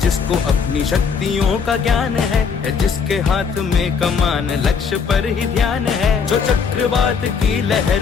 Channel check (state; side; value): quieter; right; 5.9 dB